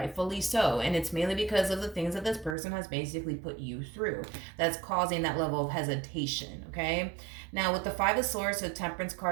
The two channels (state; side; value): drops out; left; at 2.6 s